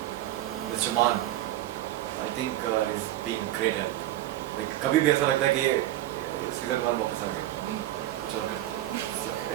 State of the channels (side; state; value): left; quieter; 14.2 dB